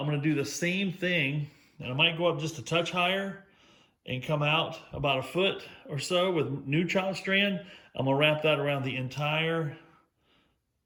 going to do the same thing, and I might go up just a touch higher and come out about a foot or so with new chop strand. I'm gonna wrap that around the entire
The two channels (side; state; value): both; identical; correlation 1.00